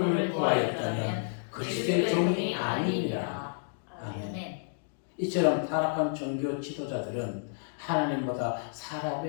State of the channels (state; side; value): silent; right; digital silence